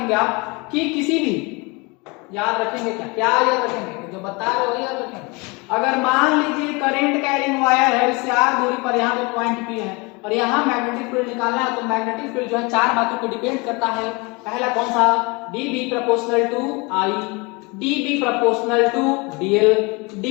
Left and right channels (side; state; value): right; quieter; 27.6 dB